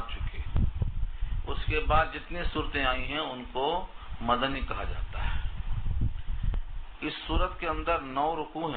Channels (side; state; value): both; identical; correlation 1.00